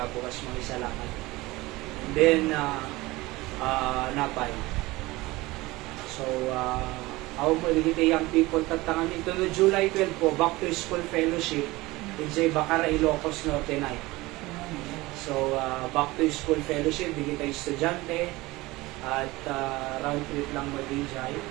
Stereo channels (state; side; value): quieter; left; 20.5 dB